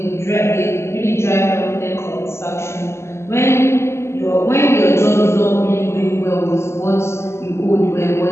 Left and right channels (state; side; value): late; right; 0.13 ms